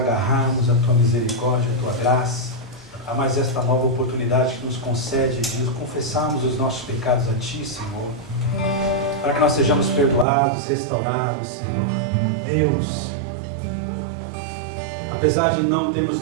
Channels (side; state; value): left; drops out; at 10.2 s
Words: à Tua misericórdia, à Tua graça, a mais esta nova oportunidade que nos concede de confessarmos os nossos pecados a Ti, Senhor, para que nós sejamos perdoados, restaurados, Senhor. Deus, apesar de não termos